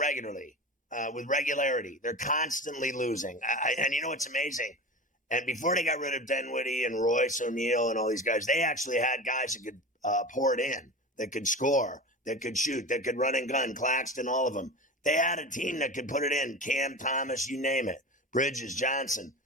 with regularity. They're constantly losing. And you know what's amazing? And before they got rid of Dinwiddie and Royce O'Neal and all these guys, they actually had guys that could pour it in, that could score, that could shoot, that could run and gun, Claxton, all of them. They had a team that could put it in, Cam Thomas, you name it, Bridges, Johnson,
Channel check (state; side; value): normal; both; correlation 0.30